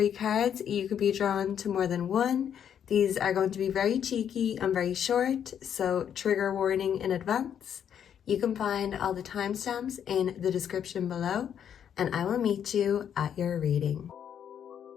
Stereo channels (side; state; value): right; quieter; 8.8 dB